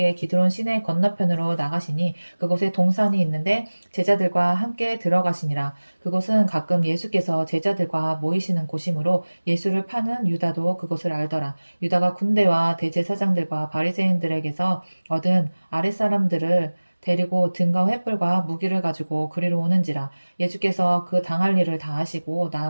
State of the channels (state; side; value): inverted; both; correlation -1.00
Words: 기드론 시내 건너편으로 나가시니 그곳에 동산이 있는데 제자들과 함께 들어가시니라. 그곳은 가끔 예수께서 제자들과 모이시는 곳이므로 예수를 파는 유다도 그곳을 알더라. 유다가 군대와 대제사장들과 바리새인들에게서 얻은 아랫사람들을 데리고 등과 횃불과 무기를 가지고 그리로 오는지라. 예수께서 그 당할 일을 다 하시고